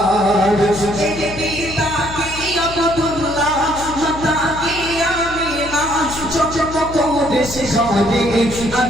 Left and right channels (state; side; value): noise; left; hum, 13 dB below the sound